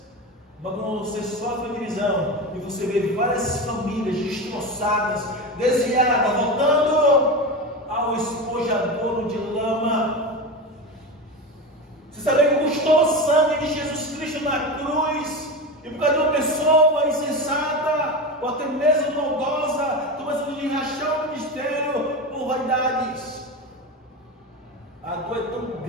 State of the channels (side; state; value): both; normal; correlation 0.22